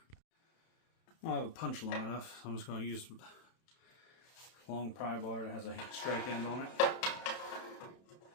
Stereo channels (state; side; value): late; right; 31 ms